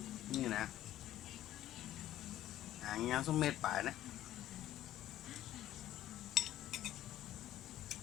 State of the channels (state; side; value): quieter; right; 13.3 dB